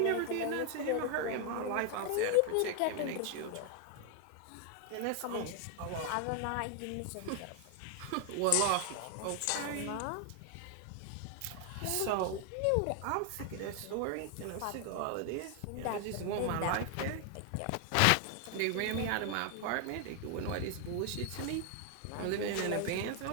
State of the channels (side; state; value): both; different; correlation 0.00